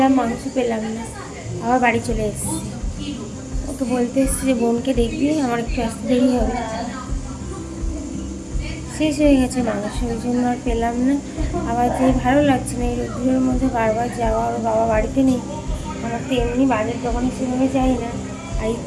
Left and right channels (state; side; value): identical; both; correlation 1.00